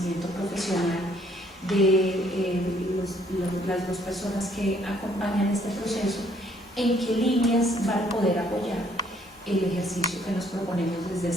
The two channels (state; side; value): normal; both; correlation 0.64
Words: profesional de las dos personas que acompañan este proceso, en qué líneas van a poder apoyar el ejercicio que nos proponemos desde